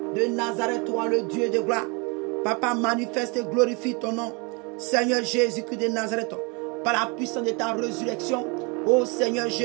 de Nazareth, toi le Dieu de gloire. Papa, manifeste et glorifie ton nom. Seigneur Jésus-Christ de Nazareth, par la puissance de ta résurrection. Ô Seigneur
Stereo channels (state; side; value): quieter; left; 31.0 dB